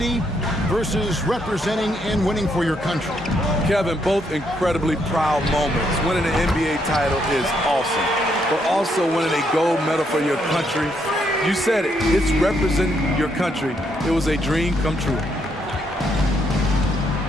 versus representing and winning for your country? Kevin, both incredibly proud moments. Winning an NBA title is awesome, but also winning a gold medal for your country. You said it, it's representing your country. It was a dream come true.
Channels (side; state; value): both; normal; correlation 0.75